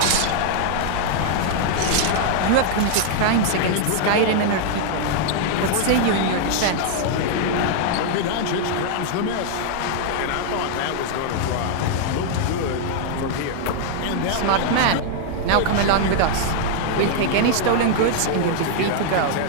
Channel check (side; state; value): both; different; correlation -0.01